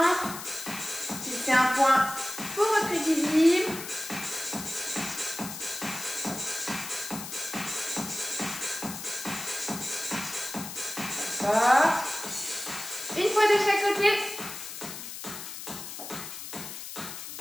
Fixez un point pour votre équilibre. D'accord. Une fois de chaque côté.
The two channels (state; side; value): noise; left; hiss, 9 dB below the sound